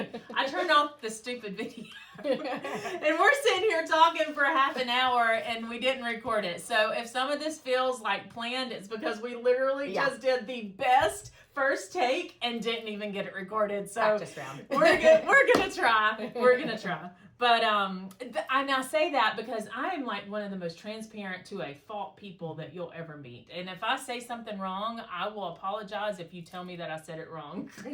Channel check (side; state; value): both; identical; correlation 1.00